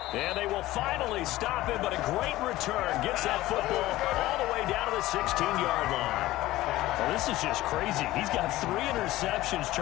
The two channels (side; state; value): right; quieter; 16.7 dB